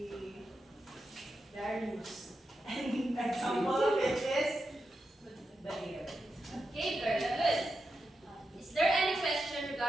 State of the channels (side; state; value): both; normal; correlation 0.88